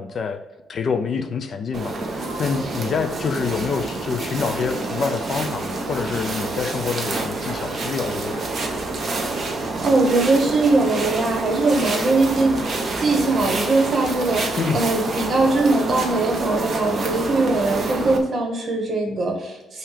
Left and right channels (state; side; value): normal; both; correlation 0.76